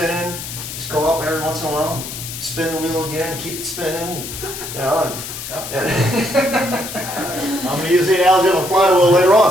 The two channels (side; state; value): left; noise; hiss, 9 dB below the sound